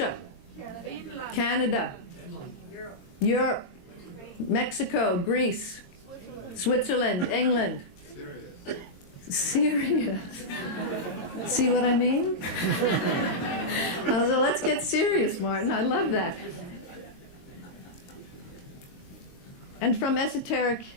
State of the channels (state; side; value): late; right; 22 ms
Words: Canada, Europe, Mexico, Greece, Switzerland, England, Syria. See what I mean? So let's get serious, Martin. I love that. And from esoteric